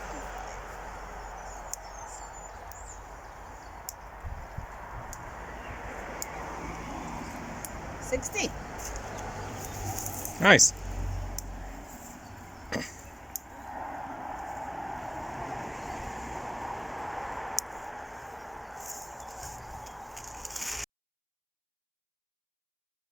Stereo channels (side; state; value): both; identical; correlation 1.00